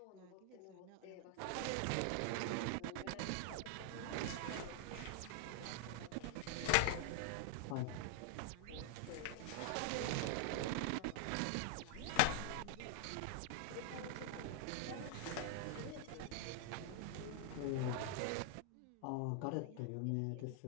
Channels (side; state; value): both; different; correlation 0.00